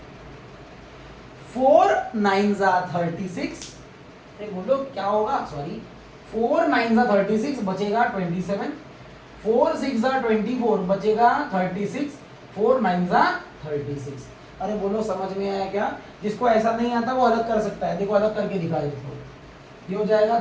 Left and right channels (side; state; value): both; identical; correlation 1.00